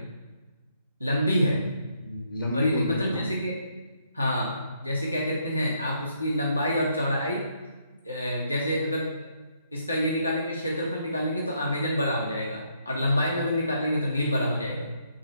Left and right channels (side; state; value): both; inverted; correlation -0.73